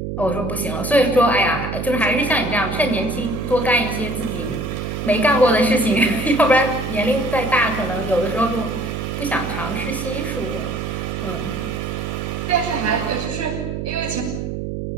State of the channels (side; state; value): right; noise; hum, 4 dB below the sound